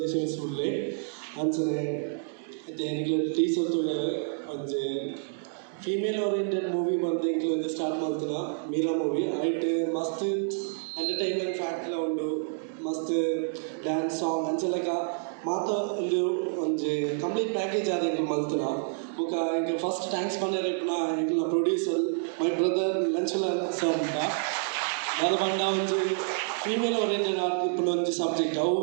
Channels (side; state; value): left; silent; digital silence